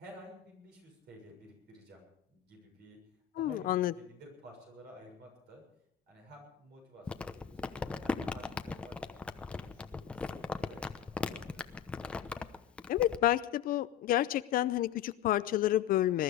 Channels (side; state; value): right; quieter; 10.3 dB